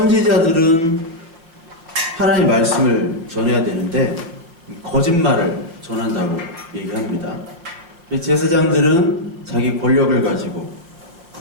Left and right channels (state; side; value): late; left; 5.8 ms